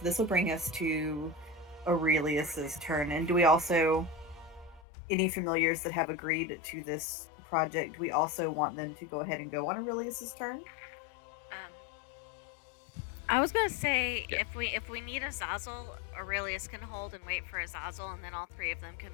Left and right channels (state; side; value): drops out; right; at 4.8 s